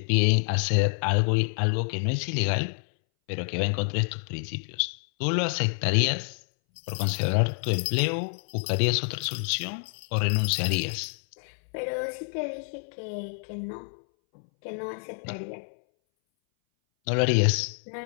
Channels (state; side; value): silent; right; 60 dB below the other